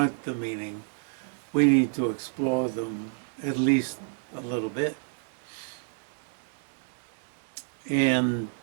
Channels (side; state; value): left; silent; digital silence